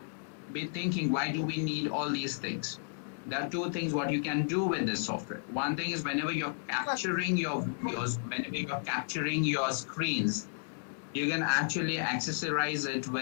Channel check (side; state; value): right; silent; digital silence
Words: be thinking, why do we need all these things? There are two things what you can do with this software. One thing is whenever you're capturing your videos, whenever you're capturing your screens, you can actually accessorize it